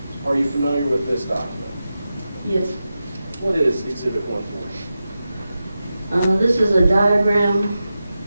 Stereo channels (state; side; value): inverted; both; correlation -0.91